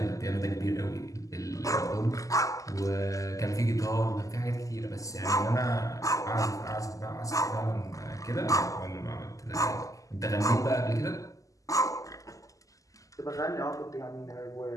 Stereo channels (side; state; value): right; late; 0.16 ms